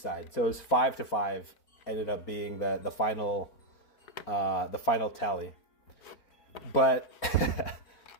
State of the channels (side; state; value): right; late; 4.5 ms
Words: So it was 5-5. Ended up being the final tally. But